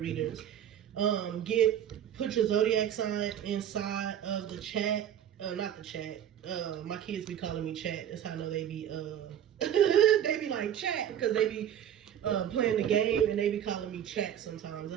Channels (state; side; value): quieter; left; 9.9 dB